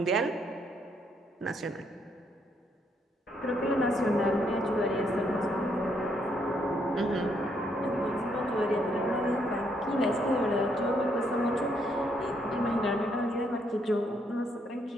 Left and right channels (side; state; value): both; normal; correlation 0.73